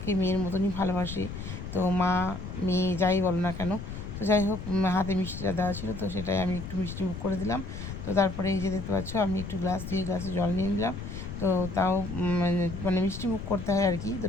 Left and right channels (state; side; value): noise; left; rumble, 8 dB below the sound